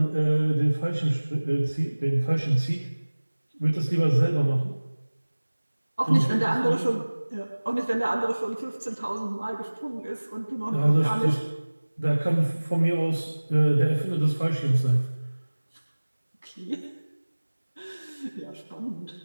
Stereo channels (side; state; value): both; inverted; correlation -1.00